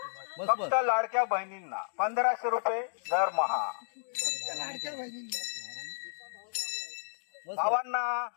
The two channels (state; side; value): silent; right; digital silence